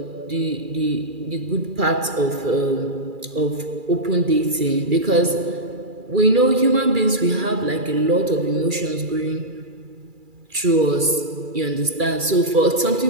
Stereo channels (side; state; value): left; late; 2.3 ms